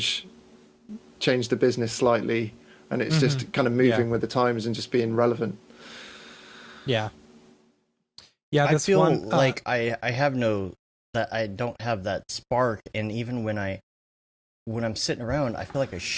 the business slightly, and it's just kind of moving with the times and just being relevant. I feel like I don't have that spark, and even when I'm sitting around, I feel like I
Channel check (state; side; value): identical; both; correlation 1.00